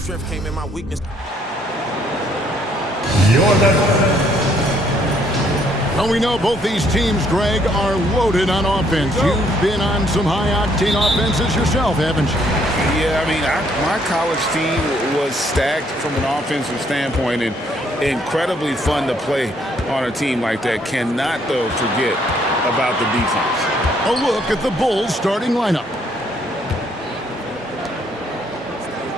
came in my weakness. Well, we know both these teams, Greg, are loaded on offense. You've been on some high-octane offenses yourself, haven't you? Yeah, I mean, my college team was stacked from an offensive standpoint and incredibly fun to play on a team like that. Cannot, though, forget about the defense. A look at the Bulls starting lineup.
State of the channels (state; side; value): normal; both; correlation 0.67